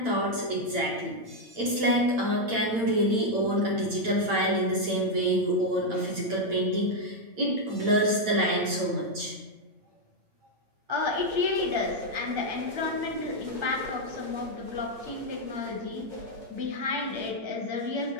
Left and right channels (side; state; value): left; late; 8.8 ms